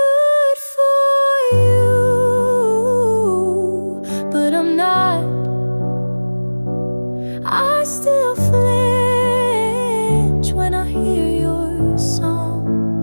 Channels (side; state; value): both; inverted; correlation -1.00